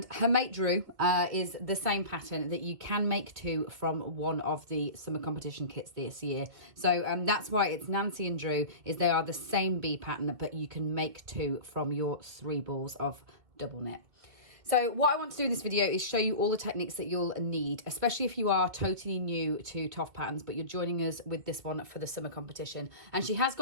her mate Drew is the same pattern that you can make too from one of the summer competition kits this year. So that's why it's Nancy and Drew, is they are the same bee pattern, but you can make two from your 3 balls of double knit. So what I want to do in this video is show you all the techniques that you'll need, especially if you are totally new to TOFT patterns, but you're joining us with this one for the summer competition. And she has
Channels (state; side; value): late; left; 2.3 ms